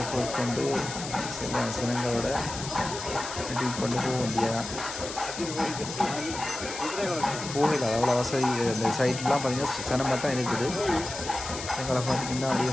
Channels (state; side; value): noise; left; hiss, 8 dB below the sound